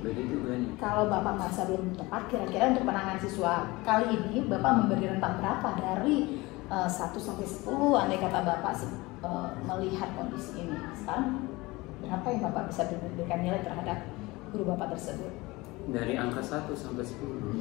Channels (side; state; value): right; quieter; 21.9 dB